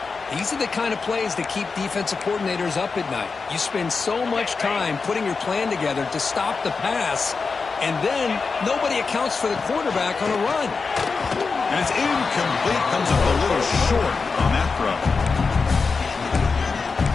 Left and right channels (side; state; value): right; quieter; 4.7 dB